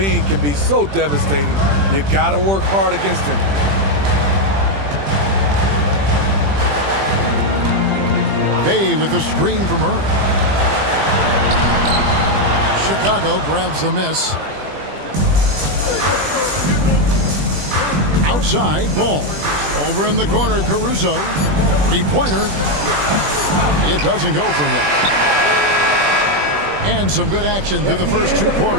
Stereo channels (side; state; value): left; late; 20 ms